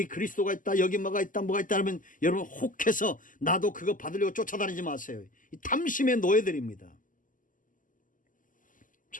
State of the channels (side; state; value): right; late; 0.38 ms